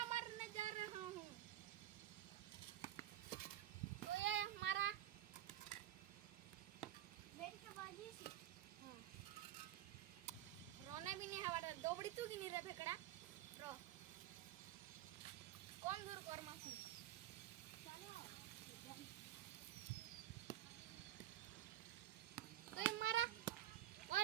मारने जा रहा हूँ। तो ये हमारा रोने भी नहीं हवा दो बड़ी तू की नहीं रे फेकड़ा रो कौन दूर कर मासू तो हमारा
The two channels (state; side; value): quieter; left; 12.6 dB